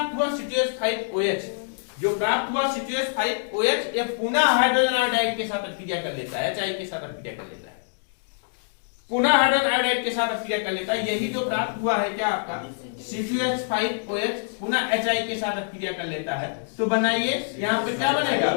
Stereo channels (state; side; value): silent; right; digital silence